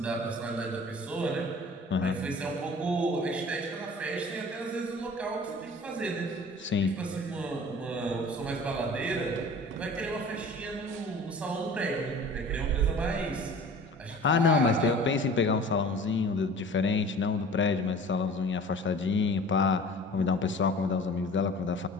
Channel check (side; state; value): both; normal; correlation 0.44